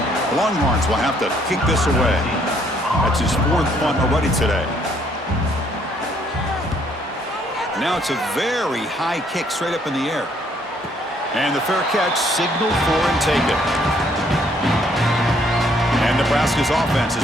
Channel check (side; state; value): both; normal; correlation 0.66